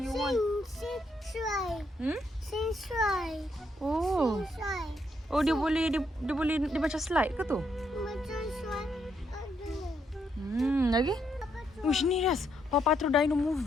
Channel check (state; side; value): normal; both; correlation 0.76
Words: want? Sing slide. Oh. Slide. Oh, dia macam slide ke tu? Macam slide. Ada. Lagi? Ush, ni Rias. Paw Patrol Dino